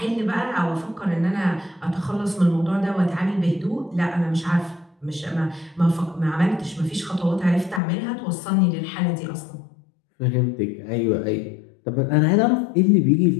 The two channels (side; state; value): right; drops out; at 7.8 s